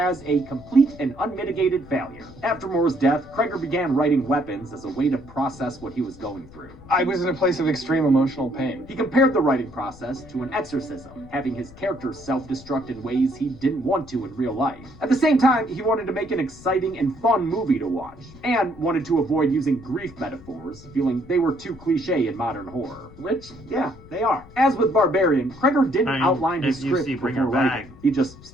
a complete and unmitigated failure. After Moore's death, Kreger began writing Weapons as a way to process what he was going through. I was in a place of extreme emotional pain. He compared the writing process to an exorcism, having his character self-destruct in ways he didn't want to in real life. At the same time, he wanted to make an exciting and fun movie to watch, and wanted to avoid using grief metaphors, feeling they were too cliche in modern horror. Which, yeah, they are. As with Barbarian, Kreger didn't outline his script before writing. He just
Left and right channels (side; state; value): left; noise; rumble, 20 dB below the sound